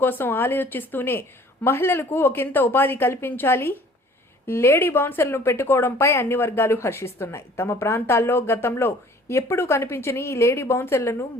కోసం ఆలోచిస్తూనే మహిళలకు ఒకంత ఉపాధి కల్పించాలి, లేడీ బౌన్సర్లను పెట్టుకోవడంపై అన్ని వర్గాలు హర్షిస్తున్నాయి. తమ ప్రాంతాల్లో గతంలో ఎప్పుడూ కనిపించని ఈ లేడీ బౌన్సర్లను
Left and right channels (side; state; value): both; normal; correlation 0.52